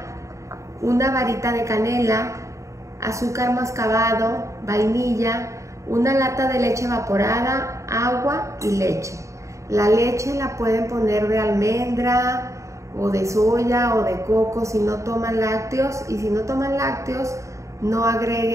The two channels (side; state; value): left; late; 0.15 ms